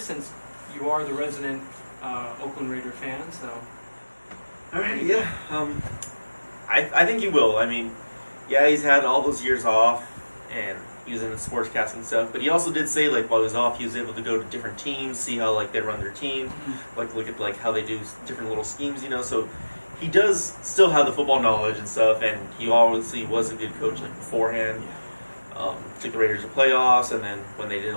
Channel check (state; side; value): inverted; both; correlation -1.00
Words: since you are the resident Oakland Raider fan. So, all right, yeah. I think he will. I mean, yeah, he's had all those years off and he was in the sportscasting stuff, but he also did say while he was off, he was able to go to different teams, see how they run their team, look at how they do different little schemes, So he does still have the football knowledge and stuff, and he obviously was a good coach beforehand. Took the Raiders to playoffs, and then when they did the